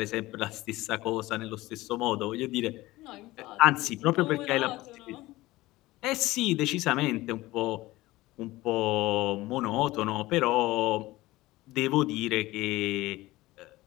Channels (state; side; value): quieter; right; 18.6 dB